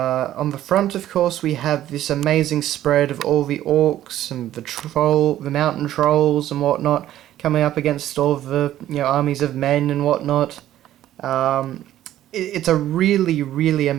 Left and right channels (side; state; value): left; quieter; 12.9 dB